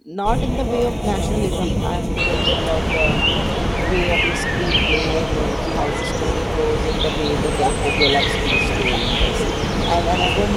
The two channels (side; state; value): both; identical; correlation 1.00